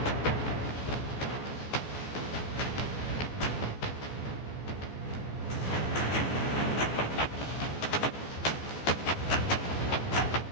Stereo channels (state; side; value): late; right; 14 ms